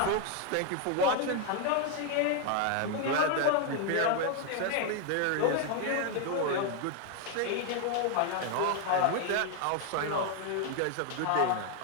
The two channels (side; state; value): both; different; correlation 0.01